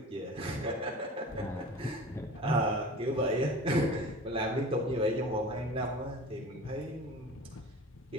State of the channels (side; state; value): both; normal; correlation 0.37